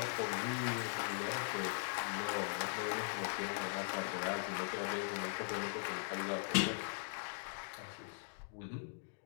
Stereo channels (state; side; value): silent; right; digital silence